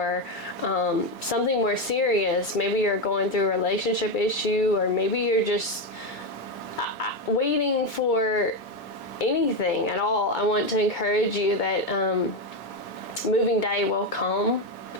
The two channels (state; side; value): normal; both; correlation 0.10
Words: something more serious. Maybe you're going through a relationship issue, or maybe you're just waiting for anything at all. I want to encourage you that moving day will come,